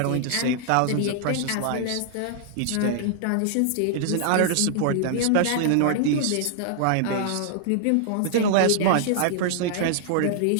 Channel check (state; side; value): different; both; correlation -0.01